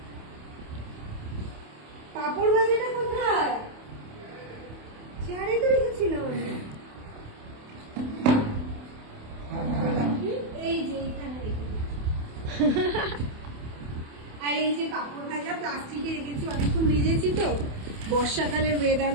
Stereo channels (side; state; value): left; late; 28 ms